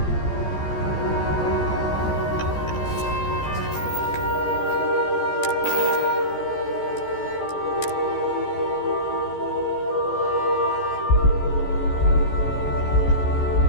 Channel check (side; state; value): right; late; 14 ms